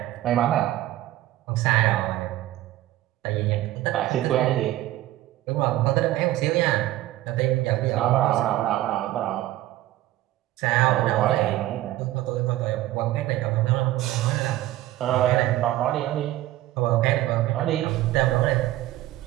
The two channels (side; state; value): left; quieter; 15.2 dB